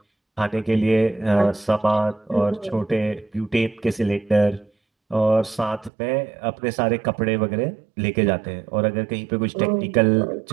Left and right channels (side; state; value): left; drops out; at 5.9 s